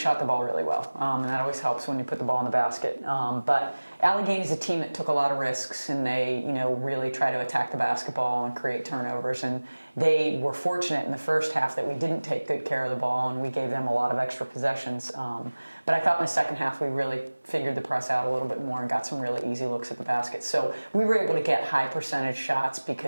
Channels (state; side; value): inverted; both; correlation -1.00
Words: the ball really well, and that always helps when you put the ball in the basket. But Allegheny is a team that took a lot of risks, and they, really try to attack the basketball and create turnovers. And they were fortunate in the first half that we didn't take good care of the ball, and we gave them a lot of extra possessions. But I thought in the second half we really figured the press out a little bit more and got some really easy looks at the basket. So we were able to get high percentage shots